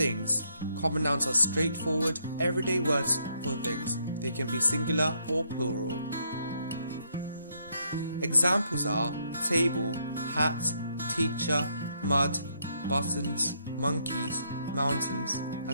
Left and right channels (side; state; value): both; inverted; correlation -0.73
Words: Common nouns are straightforward, everyday words for things. They can be singular or plural. Examples are table, hat, teacher, mud, buttons, monkeys, mountains,